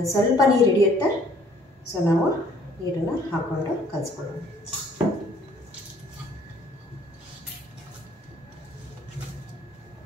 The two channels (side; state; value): both; normal; correlation 0.59